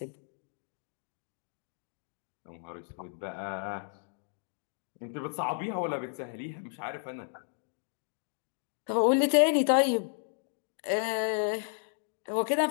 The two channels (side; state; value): right; silent; digital silence